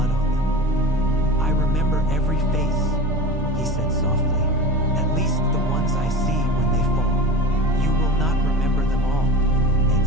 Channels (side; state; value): both; normal; correlation 0.32